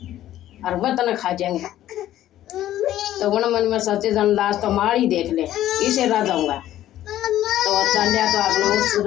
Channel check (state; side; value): quieter; right; 13.1 dB